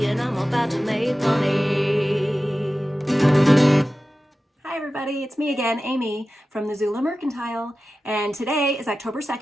and I'm about to make money. Hi everybody, it's me again, Amy from the Zula Mercantile, and today is October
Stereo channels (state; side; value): normal; both; correlation 0.94